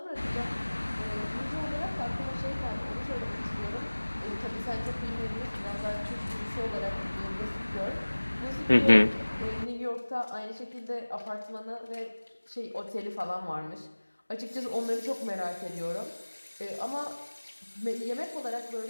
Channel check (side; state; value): both; inverted; correlation -1.00